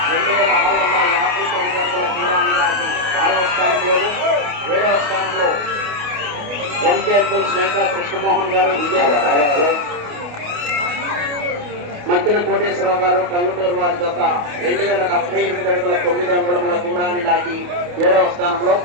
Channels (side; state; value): left; late; 28 ms